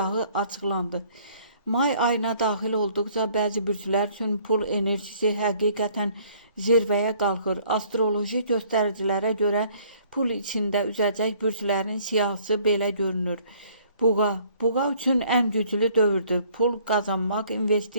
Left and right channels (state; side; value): inverted; both; correlation -0.59